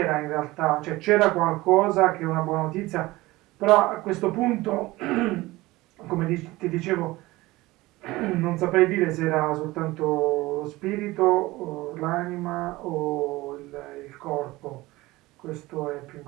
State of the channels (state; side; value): quieter; left; 19.6 dB